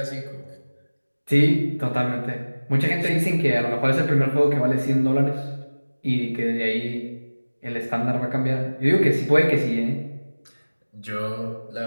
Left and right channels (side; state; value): both; inverted; correlation -1.00